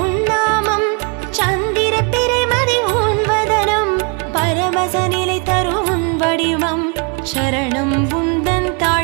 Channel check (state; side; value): quieter; left; 34.5 dB